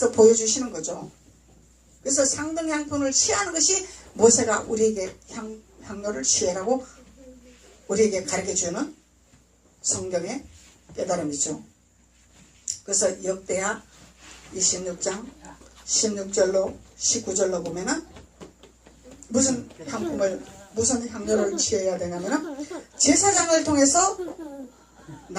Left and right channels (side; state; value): both; identical; correlation 1.00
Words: 보여주시는 거죠. 그래서 상등향품을 취하는 것이 모세가 우리에게 향료를 취해라고 우리에게 가르쳐주는 성경의 깨달음이죠. 그래서 역대하 26장 16절로 19절로 보면은 무슨 향료를 취해야 되냐면은 제사장을 통해서